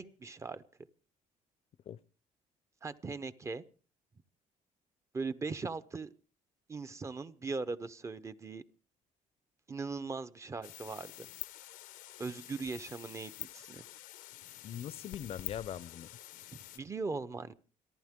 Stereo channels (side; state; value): both; normal; correlation 0.65